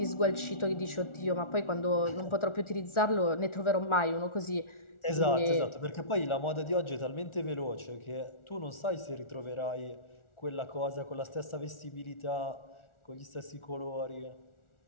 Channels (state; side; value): late; right; 1.4 ms